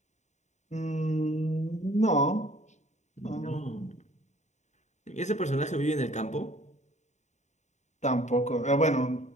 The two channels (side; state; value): right; late; 0.34 ms